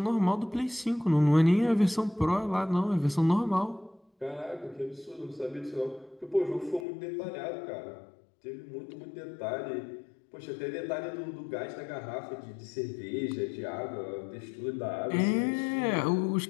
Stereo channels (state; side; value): drops out; right; at 6.9 s